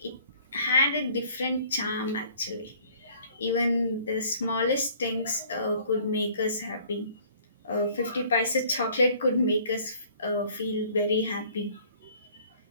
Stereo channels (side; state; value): both; inverted; correlation -0.55